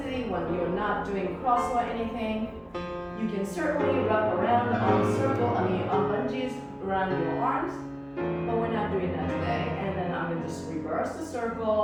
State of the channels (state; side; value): identical; both; correlation 1.00